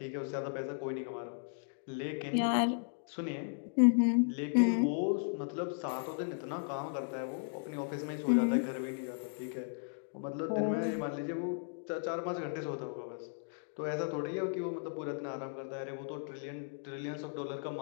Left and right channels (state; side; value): silent; right; digital silence